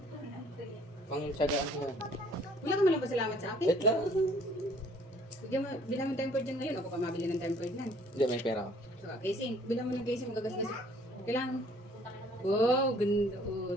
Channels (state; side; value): normal; both; correlation 0.57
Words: Pangtsagaan ko yan. Wala ka malang pasalamat sa akin. Wait lang. Bilang mo tempered dyan ngayon. Ako pa mabili ng tempered nan. Hindi, may pera ko. So, casing. Bilang mo ng casing. Magagasgas. Kailangan. Wow, ganda. Oh,